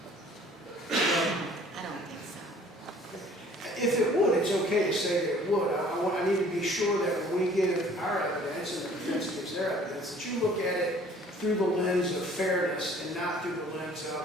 I don't think so. If it would, it's okay to say that it would. I need to be sure that when we give our evidence and the defense gives their evidence, that you look at it through the lens of fairness and not through the lens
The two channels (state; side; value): normal; both; correlation 0.54